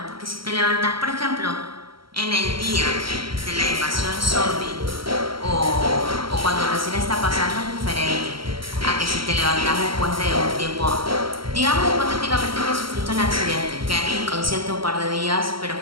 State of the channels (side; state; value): left; late; 0.74 ms